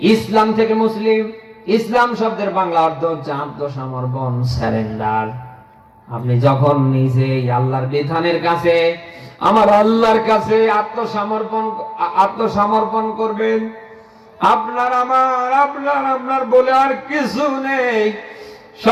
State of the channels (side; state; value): both; identical; correlation 1.00